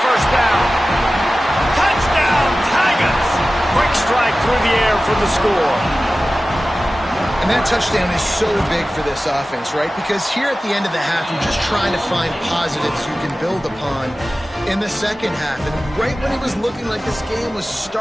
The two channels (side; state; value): both; normal; correlation 0.96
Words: first down. Touchdown, Tigers. Quick strike through the air for the score. And that touchdown is so big for this offense, right? Because here at the end of the half, you're just trying to find positives you can build upon in the second half. And right when it was looking like this game was